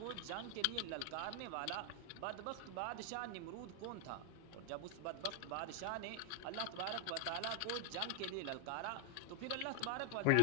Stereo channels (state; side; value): different; both; correlation 0.00